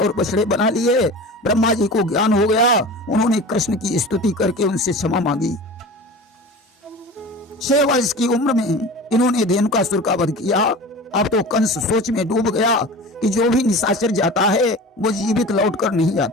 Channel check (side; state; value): both; normal; correlation 0.35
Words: बछड़े बना लिए। ब्रह्मा जी को ज्ञान हो गया। उन्होंने कृष्ण की स्तुति करके उनसे क्षमा मांगी। 6 वर्ष की उम्र में इन्होंने धेनुकासुर का वध किया। अब तो कंस सोच में डूब गया कि जो भी निशाचर जाता है वो जीवित लौटकर नहीं